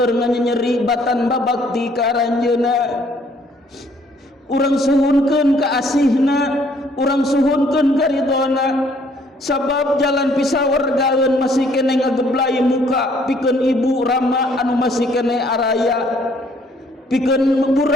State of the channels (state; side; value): normal; both; correlation 0.63